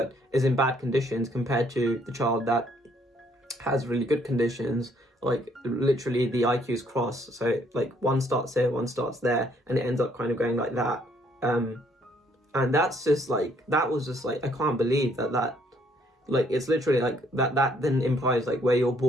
is in bad conditions compared to the child that has really good conditions, like literally the IQs cross, so like one starts here, one starts there, and it ends up kind of going like that. And that's just like, that was just like, I can't believe that like, it's literally like that then implies like where you're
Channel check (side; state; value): both; normal; correlation 0.66